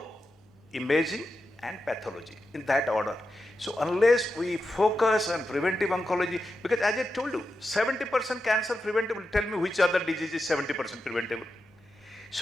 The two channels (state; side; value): normal; both; correlation 0.89